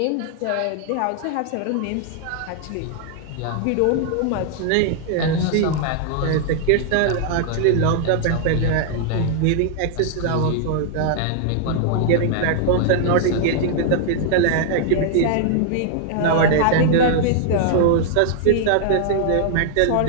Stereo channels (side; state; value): both; different; correlation -0.01